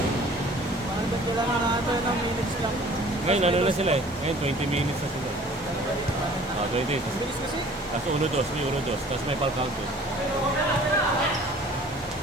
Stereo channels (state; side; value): normal; both; correlation 0.50